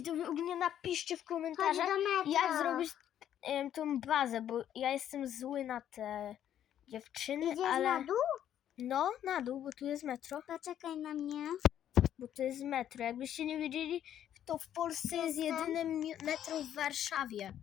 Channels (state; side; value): quieter; right; 10.6 dB